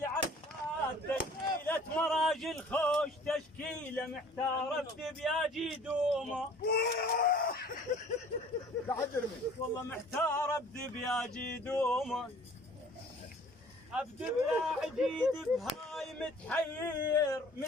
عفات، تشكيلة مراجل خوش، تشكيلة محتارة بدبياجي دومه والله محتارة بدبياجي دومه، ابدب يا عجيد بهاي متحير،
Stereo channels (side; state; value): both; normal; correlation 0.50